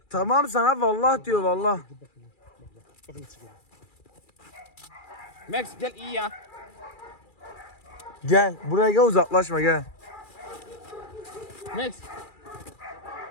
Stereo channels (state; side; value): late; right; 2.3 ms